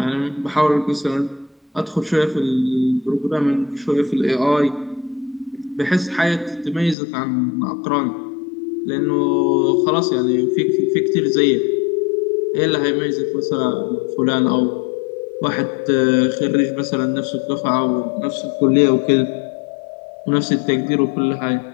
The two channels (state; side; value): drops out; right; at 7.0 s